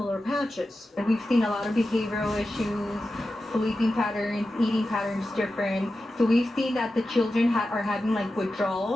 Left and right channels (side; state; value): both; normal; correlation 0.92